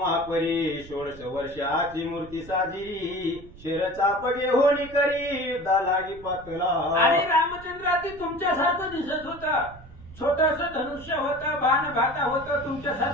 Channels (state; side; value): noise; right; rumble, 19 dB below the sound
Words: परी 16 वर्षाची मूर्ती साजी शेर चापगे होणी करी दालागी पातला. आणि रामचंद्र ती तुमच्यासारखं दिसत होतं. छोटस धनुष्य होतं, बाण भाता होतं,